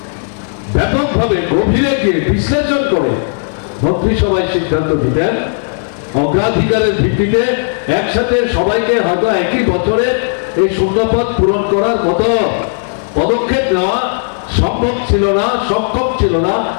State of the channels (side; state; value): right; silent; digital silence